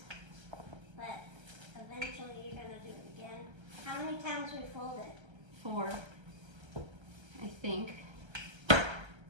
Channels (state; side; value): late; left; 1.3 ms